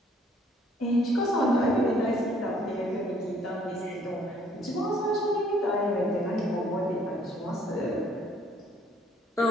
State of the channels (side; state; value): both; normal; correlation 0.62